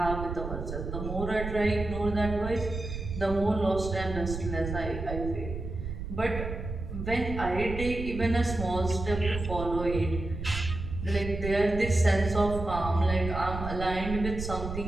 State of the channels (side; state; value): right; noise; rumble, 6 dB below the sound